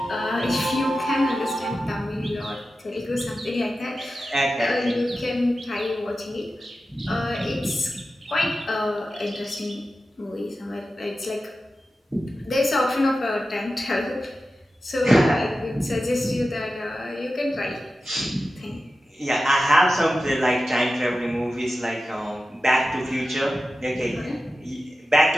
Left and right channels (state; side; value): normal; both; correlation 0.93